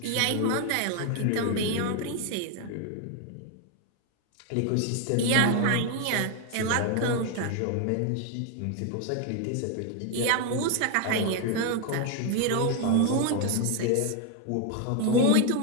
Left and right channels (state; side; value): different; both; correlation 0.01